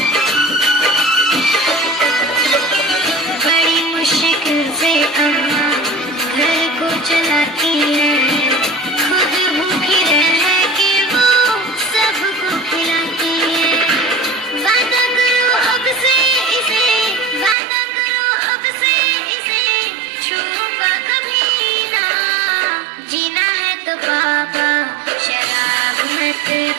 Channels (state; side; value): drops out; left; at 17.6 s